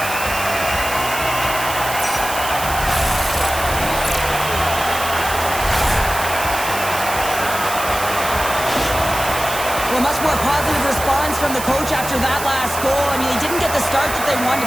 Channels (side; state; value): right; noise; hiss, 7 dB below the sound